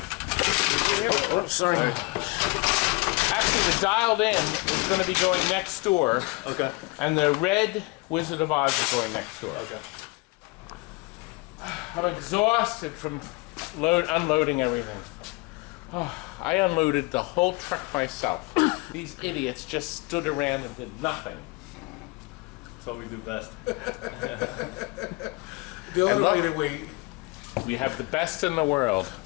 Oh, sorry. Actually, the dialed in is going to be going next door. Okay. And the red Wizard of Oz is going next door. Okay. I'm exhausted from unloading everything. Oh, I unloaded the whole truck myself. These idiots just stood around and did nothing. That's what we do best. The And other look, way to wait. We have the best in the world.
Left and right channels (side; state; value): right; quieter; 26.0 dB